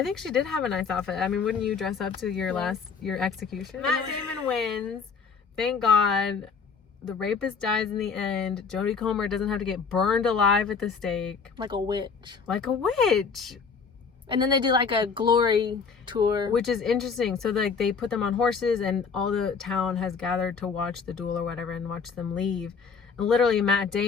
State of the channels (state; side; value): quieter; right; 5.6 dB